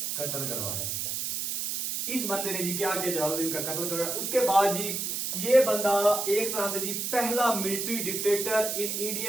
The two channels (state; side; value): noise; right; hiss, 2 dB below the sound